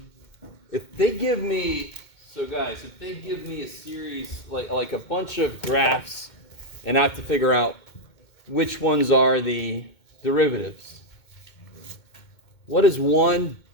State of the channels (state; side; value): late; right; 2.2 ms